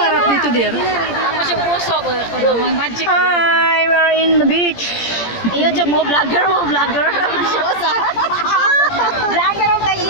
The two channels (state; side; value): late; right; 17 ms